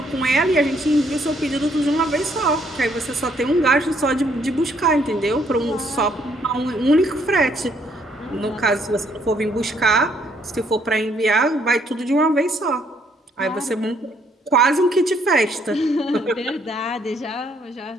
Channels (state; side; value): normal; both; correlation 0.68